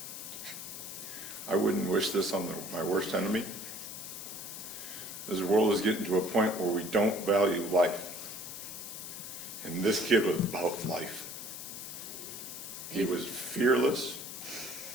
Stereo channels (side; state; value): left; noise; hiss, 9 dB below the sound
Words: I wouldn't wish this on my worst enemy. This world is getting to a point where we don't value life. And this kid was about life. He was fearless.